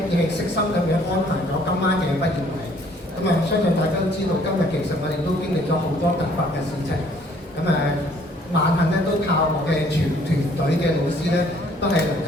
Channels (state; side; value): normal; both; correlation 0.60